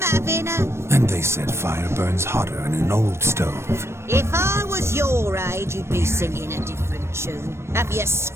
having a... And they said fire burns hotter in an old stove. If I was your age, you'd be singing a different tune. Have you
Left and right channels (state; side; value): late; left; 0.13 ms